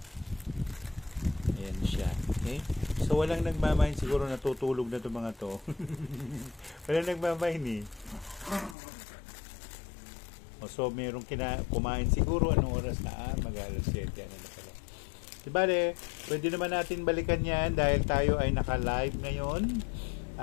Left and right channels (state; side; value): drops out; right; at 8.8 s